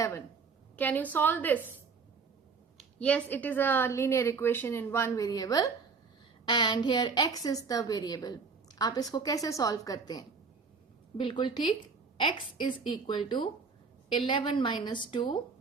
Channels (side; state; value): left; quieter; 5.0 dB